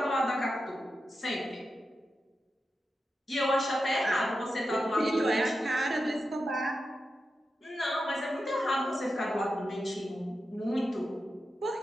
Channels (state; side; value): normal; both; correlation 0.89